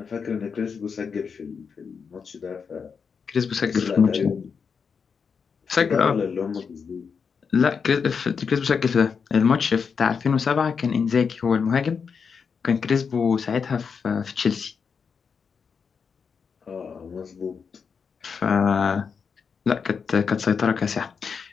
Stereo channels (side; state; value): right; quieter; 6.0 dB